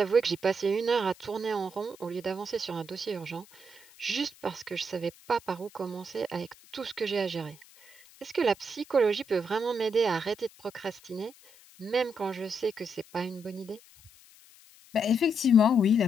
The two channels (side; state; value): left; noise; hiss, 24 dB below the sound